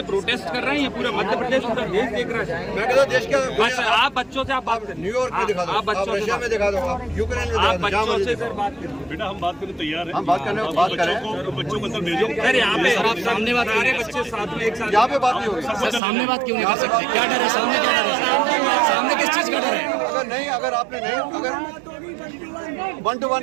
प्रोटेस्ट कर रहे हैं, ये पूरा मध्य प्रदेश पूरा देश देख रहा है। मैं कहता हूं देश का बस आप बच्चों से आप बात करें, न्यूयॉर्क में दिखा दो, आप बच्चों रशिया में दिखा दो, आप यूक्रेन में आप दिखा दो, बच्चों से सर बात करें। बेटा हम बात करने तैयार हैं। हम बात करें बच्चों को अंदर भेजो। सर यहाँ पे आप सामने बात करें, बच्चे साथ में एक साथ यहाँ पे बात नहीं होगी। सामने बात क्यों नहीं कर सकते? क्या डर है सामने? क्या डर है सामने? किस चीज का डर है? अगर आपने नहीं, अगर 1 to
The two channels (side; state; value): left; drops out; at 16.0 s